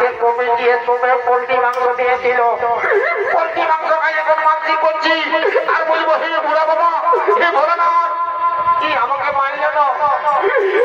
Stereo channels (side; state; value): both; identical; correlation 1.00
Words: কমে গিয়ে তুমি পোল্ট্রি মাংস দিয়েছিল পোল্ট্রি মাংস খাই এখন মানসিক করছি আর বলবো হে বুড়া বাবা হে ভোলানাথ কি আমাকে মানল না